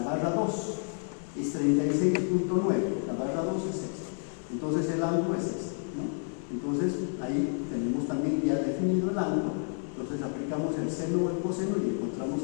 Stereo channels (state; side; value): silent; right; 58 dB below the other